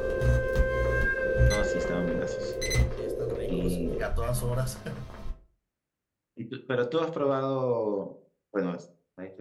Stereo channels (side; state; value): both; identical; correlation 1.00